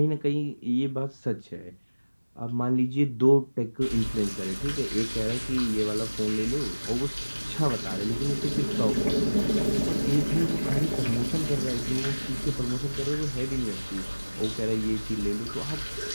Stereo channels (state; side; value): inverted; both; correlation -1.00